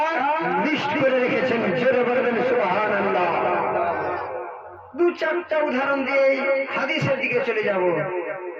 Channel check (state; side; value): identical; both; correlation 1.00